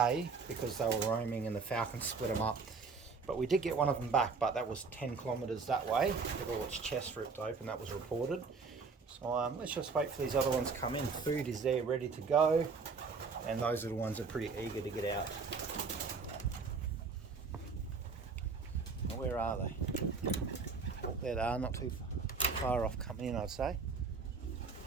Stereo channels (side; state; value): left; quieter; 4.7 dB